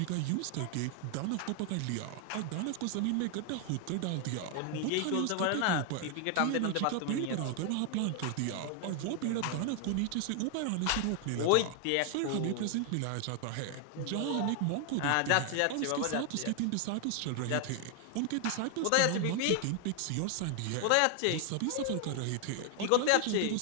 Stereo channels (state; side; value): different; both; correlation 0.00